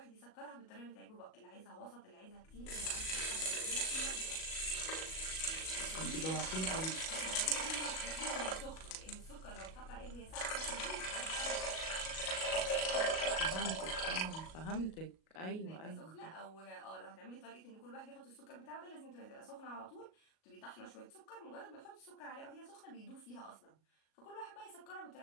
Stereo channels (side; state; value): right; late; 37 ms